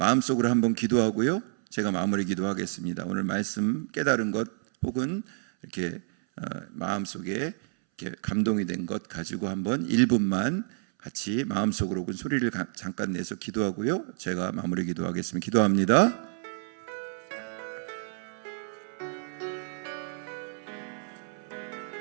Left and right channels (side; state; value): left; silent; 59 dB below the other